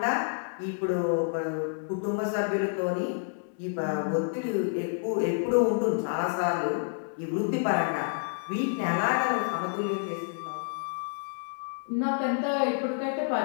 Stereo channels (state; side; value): silent; right; 59 dB below the other